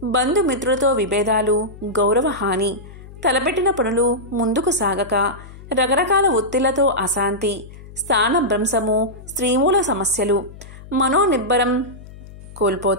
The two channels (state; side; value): noise; left; hum, 17 dB below the sound